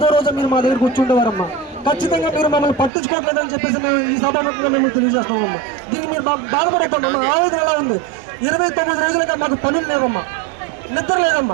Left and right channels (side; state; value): left; drops out; at 2.9 s